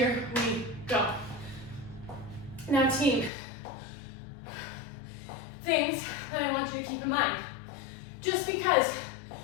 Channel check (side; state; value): right; drops out; at 3.3 s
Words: we go. Now team, things that I want you to keep in mind. Just because